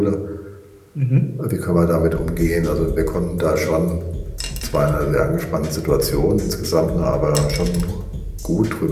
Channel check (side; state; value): both; identical; correlation 1.00